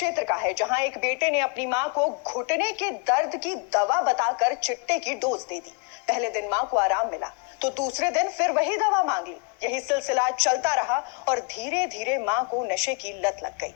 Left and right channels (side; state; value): right; quieter; 34.3 dB